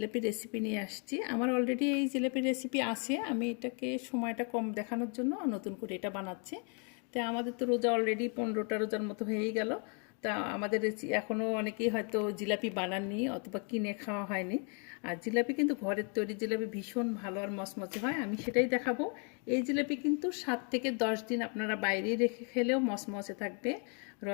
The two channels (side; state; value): right; quieter; 38.4 dB